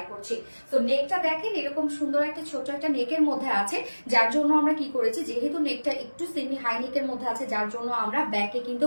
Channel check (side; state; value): both; inverted; correlation -1.00